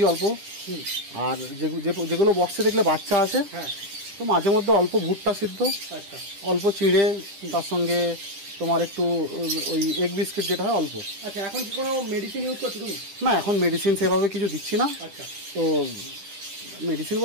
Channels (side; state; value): left; late; 10 ms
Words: অল্প, আর যেগুলো বক্সে দেখলে বাচ্চা আছে, তো মাঝে মধ্যে অল্প ভুট্টা সিদ্ধ, অল্প চিড়ে, তার সঙ্গে তোমার একটু ওই এগ বিস্কিট যেটা হয় অল্প। আচ্ছা, এখন কি কোনো মেডিসিন ইউজ করছো তুমি? না, এখন মেডিসিন সেভাবে কিছু দিচ্ছি না। তো মেডিসিন